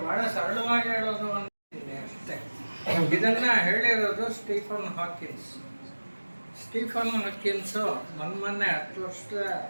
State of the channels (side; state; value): both; inverted; correlation -1.00